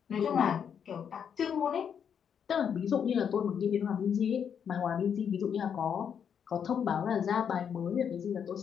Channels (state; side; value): quieter; right; 7.7 dB